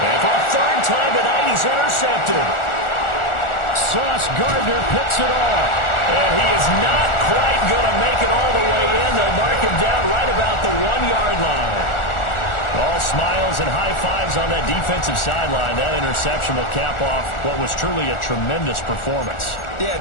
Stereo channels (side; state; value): right; late; 1.4 ms